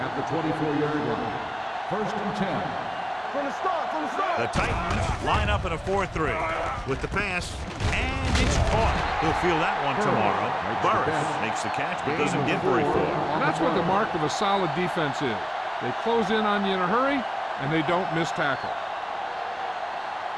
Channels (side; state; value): both; identical; correlation 1.00